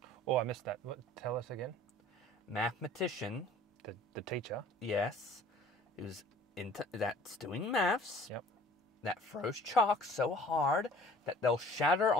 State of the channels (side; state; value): both; normal; correlation 0.51